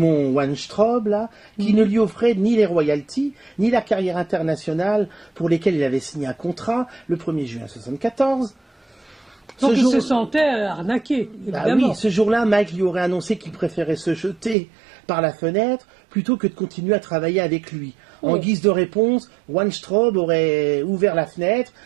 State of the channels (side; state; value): left; drops out; at 14.6 s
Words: Weinstraub, là, qui ne lui offrait ni les royalties, ni la carrière internationale pour lesquelles il avait signé un contrat le 1er juin 1974. Donc il se sentait arnaqué, évidemment. Oui, ce jour-là, Mike lui aurait annoncé qu'il préférait se jeter par la fenêtre plutôt que de continuer à travailler avec lui. En guise de réponse, Weinstraub aurait ouvert la fenêtre